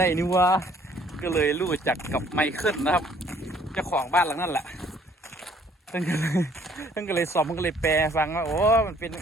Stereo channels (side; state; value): both; normal; correlation 0.60